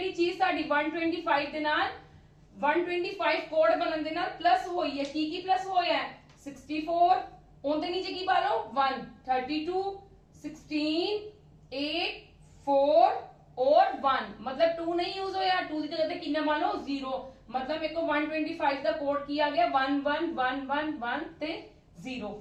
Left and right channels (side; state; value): both; identical; correlation 1.00